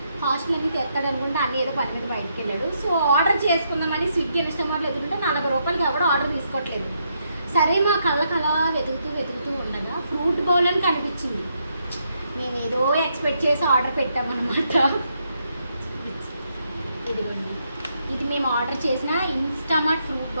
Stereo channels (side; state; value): both; inverted; correlation -0.78